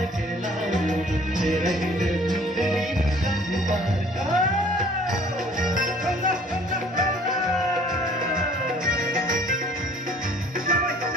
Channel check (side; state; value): both; normal; correlation 0.53